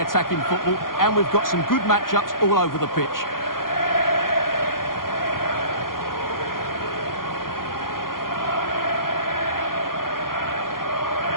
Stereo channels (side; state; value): right; late; 0.91 ms